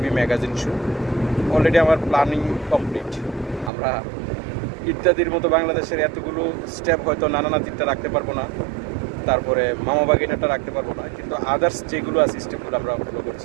magazine show. Already আমার প্ল্যানিং কমপ্লিট। আমরা ইত্যাদির মতো বাংলাদেশের এতগুলো স্টেপ হয়তো নাতিটা রাখতে পারবো না, তারপরে মামা বাগিনাটা রাখতে পারবো না, কিন্তু আদার্স যেগুলো আছে স্টেপগুলো আমরা ফলো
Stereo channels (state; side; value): drops out; left; at 3.7 s